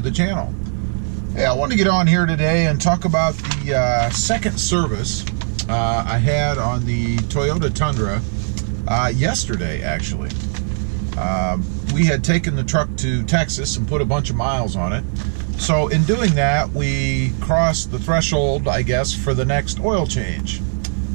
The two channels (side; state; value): left; silent; digital silence